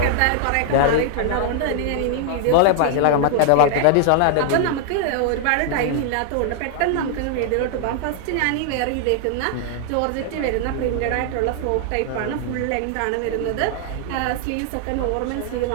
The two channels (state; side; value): different; both; correlation 0.00